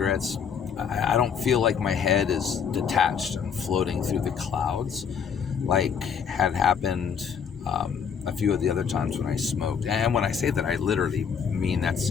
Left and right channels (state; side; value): quieter; right; 7.0 dB